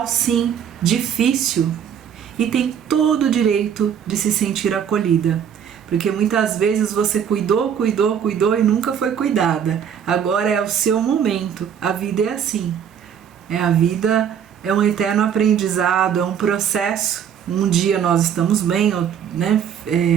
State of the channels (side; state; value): left; quieter; 8.3 dB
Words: sim, difícil, e tem todo o direito de se sentir acolhida. Porque muitas vezes você cuidou e nunca foi cuidada. Agora é o seu momento. A vida é assim. A vida é um eterno aprendizado, é um processo. Um dia nós estamos bem, né,